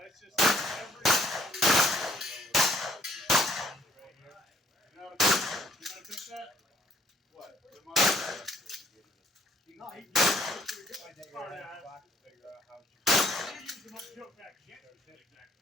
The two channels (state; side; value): normal; both; correlation 0.64